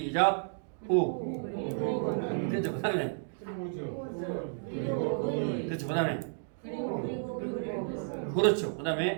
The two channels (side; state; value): left; silent; digital silence